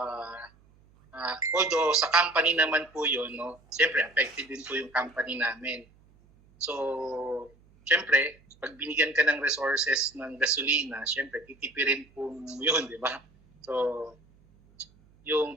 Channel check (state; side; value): noise; right; hum, 30 dB below the sound